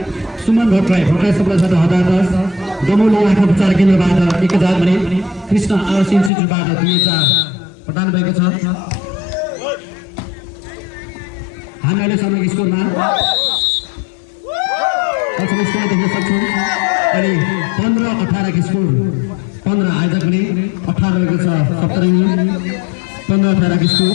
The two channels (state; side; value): drops out; right; at 6.3 s